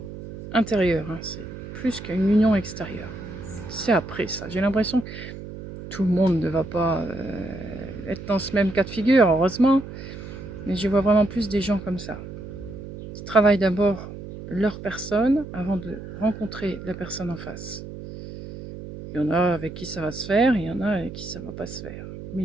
intérieure. Hein. C'est plus qu'une union extérieure. C'est après ça. J'ai l'impression que tout le monde ne va pas être dans ce même cas de figure, heureusement. Mais je vois vraiment plus des gens comme ça. Qui travaillent d'abord leur personne avant de rencontrer la personne en face. Il y en a avec qui ça va se faire, il y en a avec qui ça ne va pas se faire. Mais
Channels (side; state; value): right; noise; hum, 11 dB below the sound